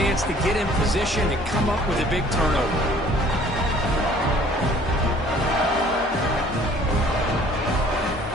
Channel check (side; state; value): both; normal; correlation 0.55